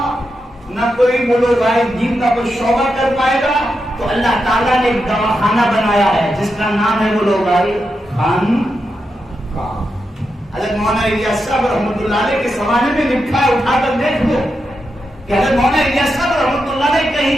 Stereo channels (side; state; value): both; normal; correlation 0.86